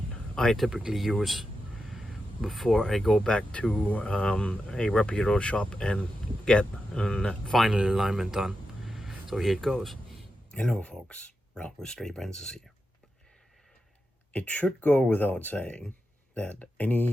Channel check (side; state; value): both; normal; correlation 0.89